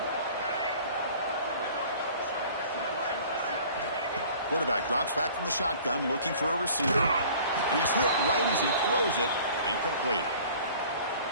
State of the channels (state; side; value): inverted; both; correlation -0.48